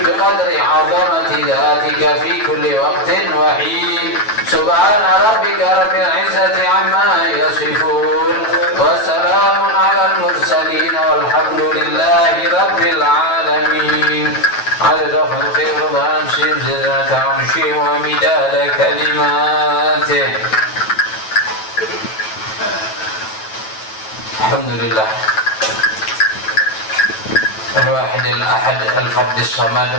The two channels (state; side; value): late; right; 9.1 ms